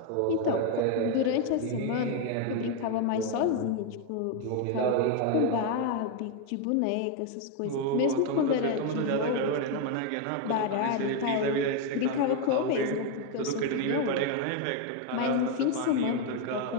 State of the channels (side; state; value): both; different; correlation 0.01